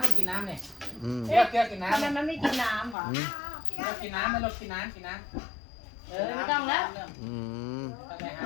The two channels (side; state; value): right; drops out; at 3.0 s